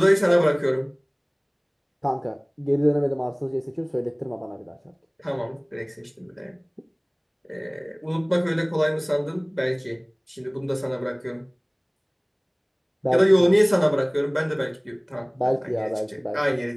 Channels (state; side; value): identical; both; correlation 1.00